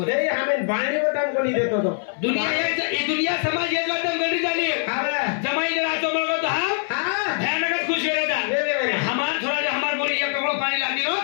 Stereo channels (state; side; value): silent; right; 59 dB below the other